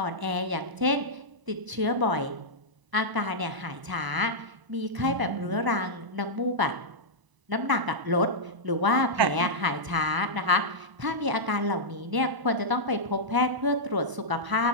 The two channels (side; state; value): left; late; 1.0 ms